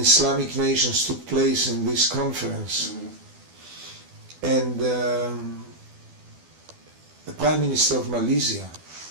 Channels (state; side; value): late; left; 12 ms